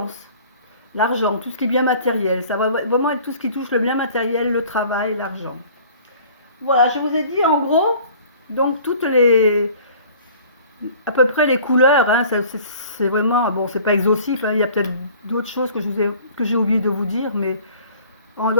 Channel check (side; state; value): both; inverted; correlation -0.49